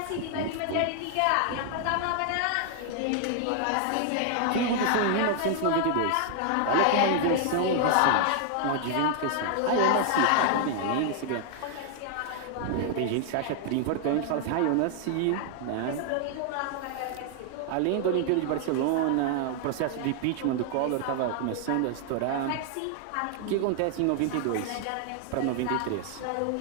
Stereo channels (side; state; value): both; different; correlation 0.00